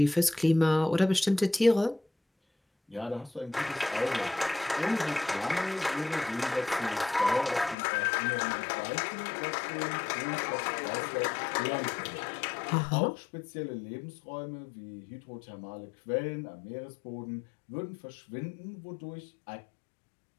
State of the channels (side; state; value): right; drops out; at 7.8 s